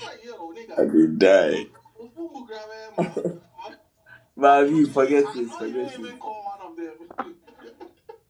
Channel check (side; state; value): both; identical; correlation 1.00